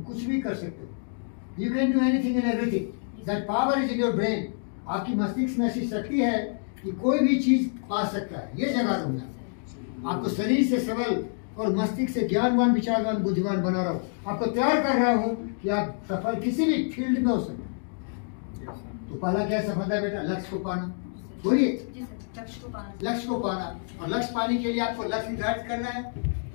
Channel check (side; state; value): right; silent; digital silence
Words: कुछ भी कर सकते हो। You can do anything and everything, that power is in your brain. आपकी मस्तिष्क में ऐसी शक्ति है कि कोई भी चीज पा सकता है। ये जगा रहा हूँ मैं आपको, शरीर से सबल और मस्तिष्क से ज्ञानवान, विचारवान, बुद्धिमान बना रहा हूँ। आपको तैयार कर रहा हूँ कि आप सफल किसी भी फील्ड में हो सके। तो पहला क्या सफलता है बेटा? लक्ष्य को पाना। बोलिए, लक्ष्य को पाना। और लक्ष्य पाने के लिए आपको लक्ष्य निर्धारित करना है।